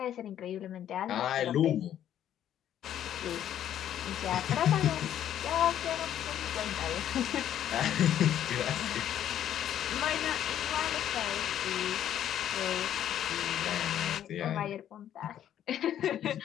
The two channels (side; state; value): right; quieter; 10.8 dB